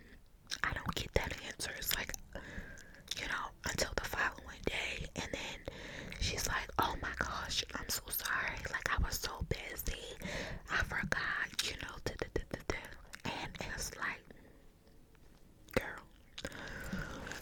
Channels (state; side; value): identical; both; correlation 1.00